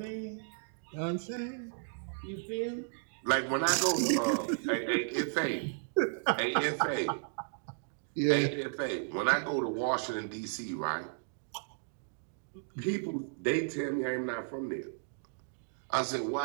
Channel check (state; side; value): silent; left; digital silence